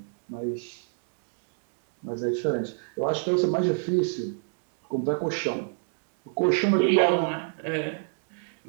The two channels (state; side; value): silent; left; digital silence